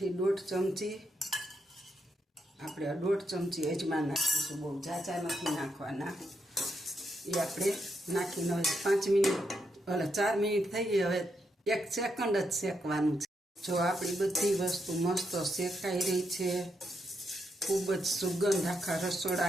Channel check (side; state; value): both; normal; correlation 0.81